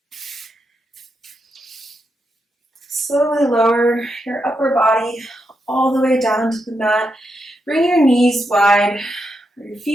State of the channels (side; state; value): both; normal; correlation 0.84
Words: Slowly lower your upper body all the way down to the mat. Bring your knees wide, or your